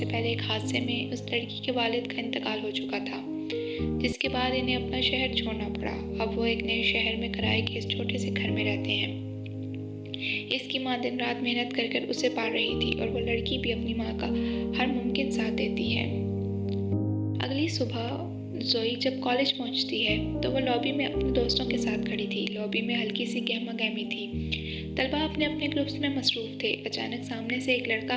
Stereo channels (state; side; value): identical; both; correlation 1.00